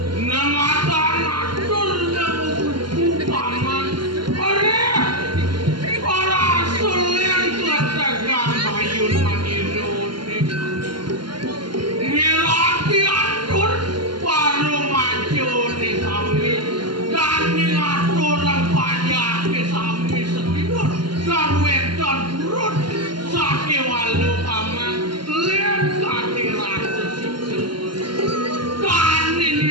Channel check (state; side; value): late; left; 0.72 ms